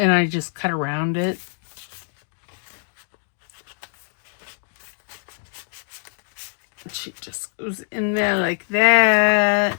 I just cut around it. She just goes in there like that.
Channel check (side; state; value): right; silent; digital silence